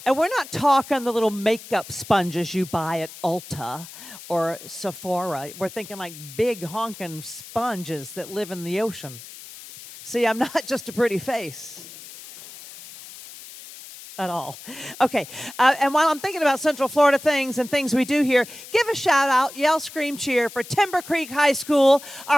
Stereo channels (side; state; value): left; noise; hiss, 16 dB below the sound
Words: And we're not talking the little makeup sponges you buy at Ulta or Sephora. We're thinking like big honking sponges that live in the ocean. See, I'm not just a pretty face at all. Okay, and while I'm thinking about Central Florida things and things we do here, give a shout out, yell, scream, cheer for Timber Creek High School,